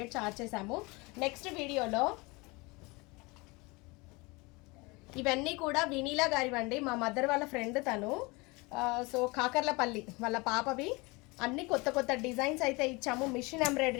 చార్జ్ చేసాము. నెక్స్ట్ వీడియోలో ఇవన్నీ కూడా వినీలా గారివండి, మా మదర్ వాళ్ళ ఫ్రెండ్ తను. సో కాకర్లపల్లి వాళ్ళ పాపవి. అన్ని కొత్త కొత్త డిజైన్స్ అయితే ఇచ్చాము మిషన్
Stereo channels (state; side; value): quieter; right; 25.7 dB